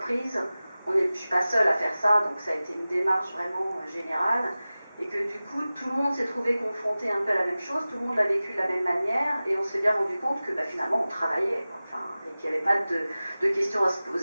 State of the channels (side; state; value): both; inverted; correlation -0.97